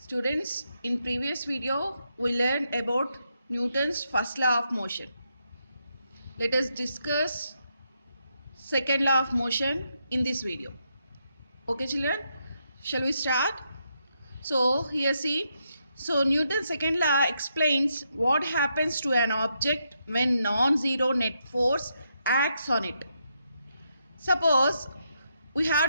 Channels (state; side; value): inverted; both; correlation -0.80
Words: in previous video, we learned about Newton's first law of motion. Let us discuss second law of motion in this video. Okay, children? Shall we start? So, here see. So, Newton's second law explains what happens to an object when non-zero net force acts on it. Suppose we